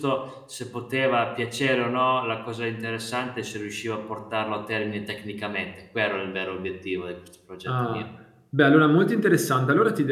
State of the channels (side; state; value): both; identical; correlation 1.00